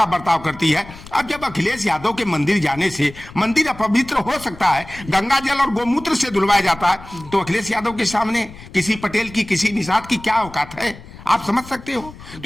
बर्ताव करती है। अब जब अखिलेश यादव के मंदिर जाने से मंदिर अपवित्र हो सकता है, गंगा जल और गोमूत्र से धुलवाया जाता है, तो अखिलेश यादव के सामने किसी पटेल की, किसी निषाद की क्या औकात है? आप समझ सकते हो।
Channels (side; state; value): left; noise; rumble, 18 dB below the sound